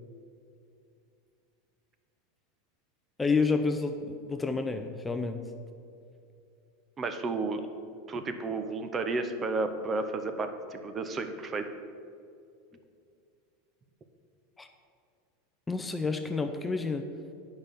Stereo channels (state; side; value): normal; both; correlation 0.64